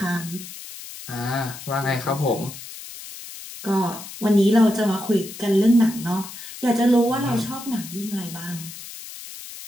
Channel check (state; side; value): noise; left; hiss, 13 dB below the sound